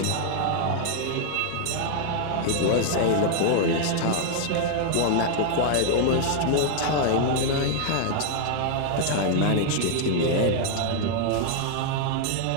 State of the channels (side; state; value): both; different; correlation 0.00